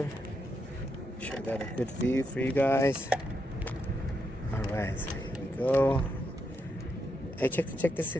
Sure I got a good view for you guys. All right, so here we go. Hey, check this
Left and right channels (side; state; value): both; normal; correlation 0.82